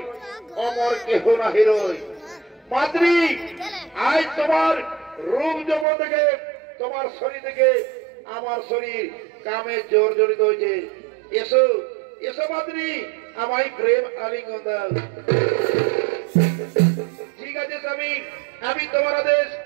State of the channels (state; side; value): drops out; left; at 5.9 s